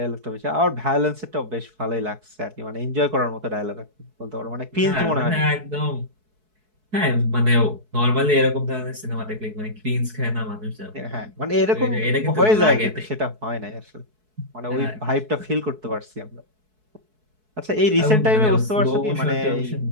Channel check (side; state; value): left; late; 4.6 ms